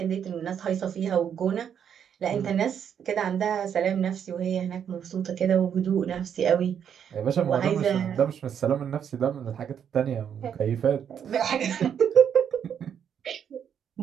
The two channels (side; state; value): left; quieter; 8.3 dB